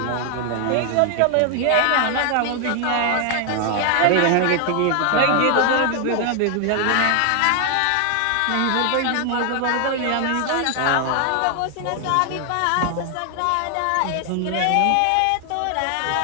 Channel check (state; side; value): different; both; correlation 0.00